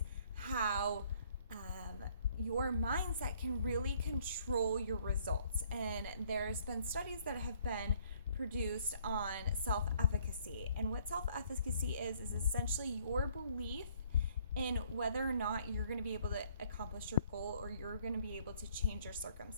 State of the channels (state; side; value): inverted; both; correlation -0.62